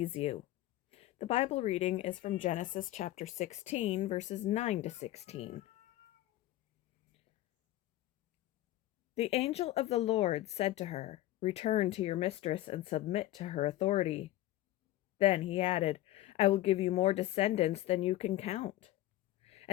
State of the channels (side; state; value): right; quieter; 15.3 dB